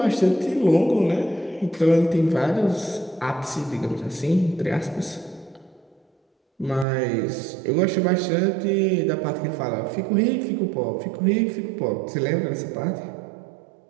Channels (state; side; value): drops out; left; at 6.9 s